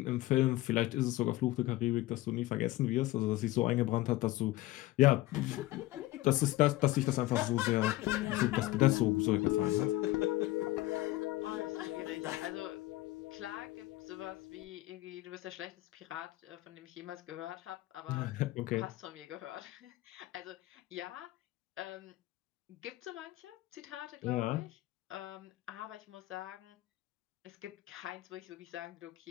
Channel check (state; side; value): quieter; right; 17.2 dB